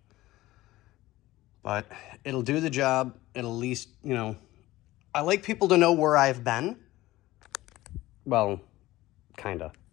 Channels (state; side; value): quieter; right; 17.3 dB